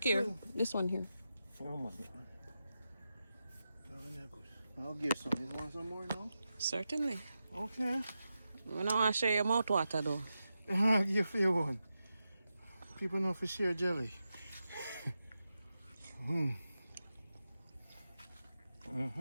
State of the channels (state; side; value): inverted; both; correlation -0.90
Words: here, too. this one here. Oh my God. Good. I'll give some. You want some more now? Certainly. Okay. We don't want to share your mouth water though. I'll give you one. People know for share jelly.